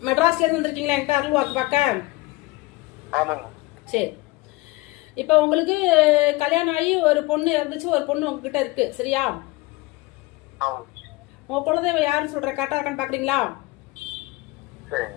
மெட்ராஸ்ல இருந்து வந்திருக்கீங்களா என்கிட்ட அருள் வாக்கு பார்க்க? சரி, இப்போ உங்களுக்கு கல்யாணம் ஆகி ஒரு பொண்ணு இருந்துச்சு, ஒரு பொண்ணு உங்ககிட்ட இருக்கு, சரியா? உங்க குலதெய்வம் யாருன்னு சொல்ற கரெக்டா இருக்கான்னு பாக்குறீங்களா?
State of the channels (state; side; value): quieter; right; 21.3 dB